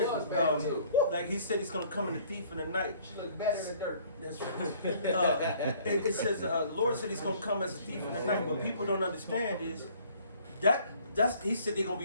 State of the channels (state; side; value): inverted; both; correlation -0.57